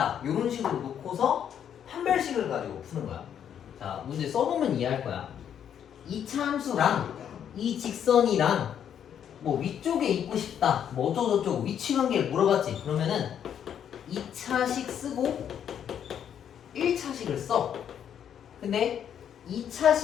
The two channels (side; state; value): right; quieter; 9.0 dB